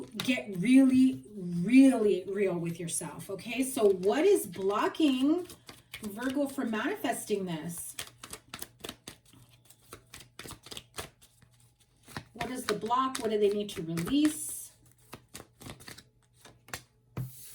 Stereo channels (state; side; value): identical; both; correlation 1.00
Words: get really, really real with yourself, okay? So what is blocking Virgo from manifesting this? What is the block? What do they need to release?